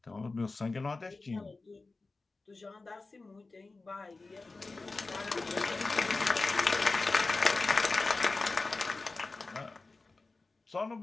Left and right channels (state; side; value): quieter; right; 3.6 dB